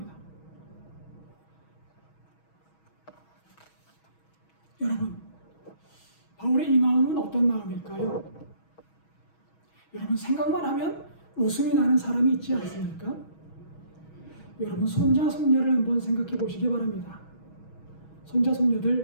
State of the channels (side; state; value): right; late; 6.2 ms